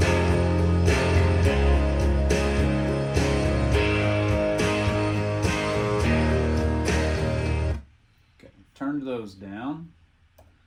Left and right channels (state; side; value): identical; both; correlation 1.00